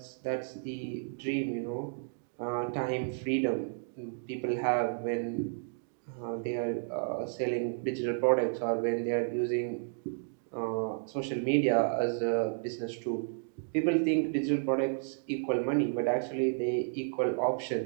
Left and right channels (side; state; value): left; silent; digital silence